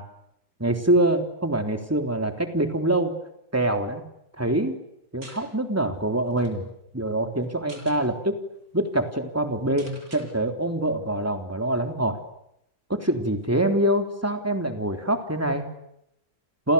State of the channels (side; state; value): both; normal; correlation -0.14